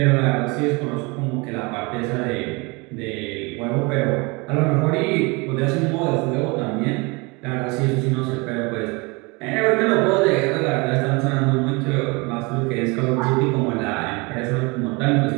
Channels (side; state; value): left; quieter; 27.5 dB